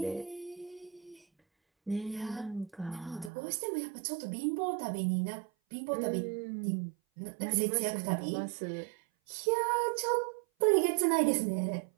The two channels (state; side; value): drops out; left; at 3.3 s